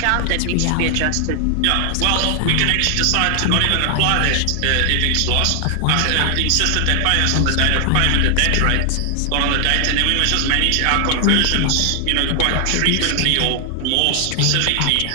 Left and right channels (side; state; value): both; different; correlation 0.00